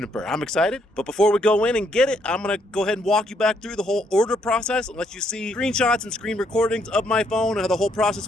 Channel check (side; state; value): both; normal; correlation 0.72